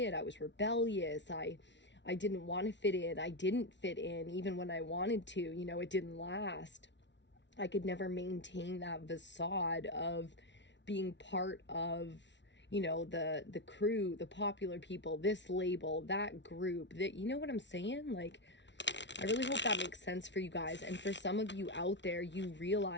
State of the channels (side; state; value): right; late; 0.52 ms